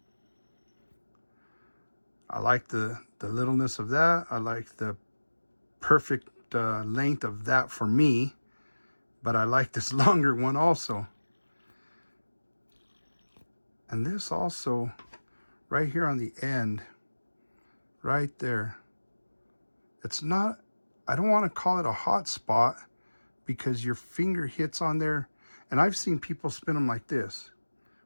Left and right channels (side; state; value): both; inverted; correlation -1.00